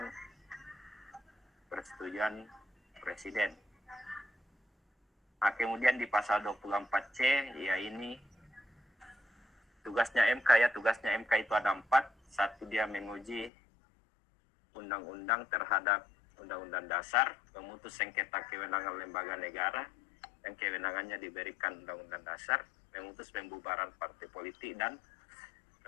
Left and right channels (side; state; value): right; drops out; at 13.5 s